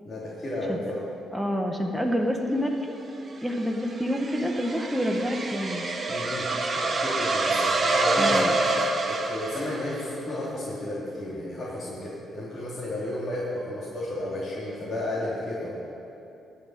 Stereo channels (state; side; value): normal; both; correlation 0.81